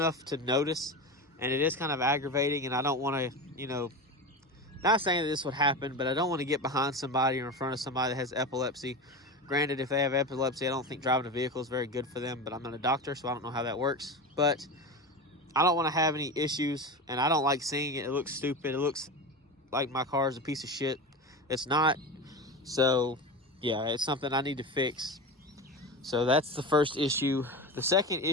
to notice, and it is kind of aggravating. And I don't want to, not saying that this would happen, but I don't want to get behind somebody or in front of somebody that has epilepsy. Granted, if they have epilepsy, I don't think driving a vehicle is very good for them, but I'm not a doctor, so I don't know how that works. But I don't want to have any issues, and I don't like seeing it. It looks stupid. It looks like my car is a piece of shit. It's not. So yeah, it's something I need to fix. So that's the first issue. The second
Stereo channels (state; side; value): normal; both; correlation 0.24